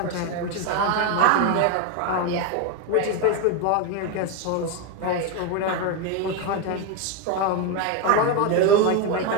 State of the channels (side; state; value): both; different; correlation 0.02